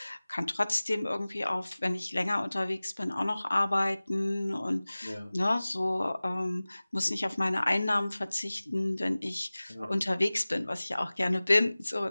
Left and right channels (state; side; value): inverted; both; correlation -0.99